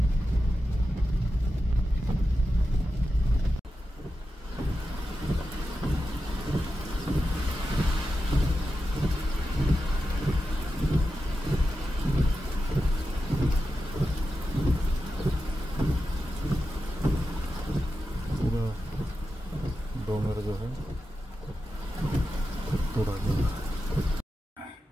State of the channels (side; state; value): both; normal; correlation 0.90